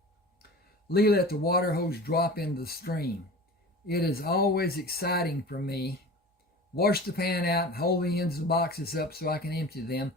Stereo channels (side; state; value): both; normal; correlation 0.36